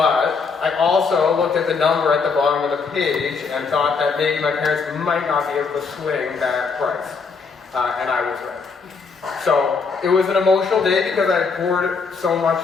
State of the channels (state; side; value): quieter; right; 5.0 dB